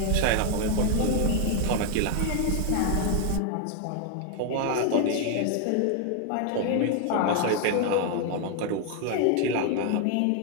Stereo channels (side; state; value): both; different; correlation 0.00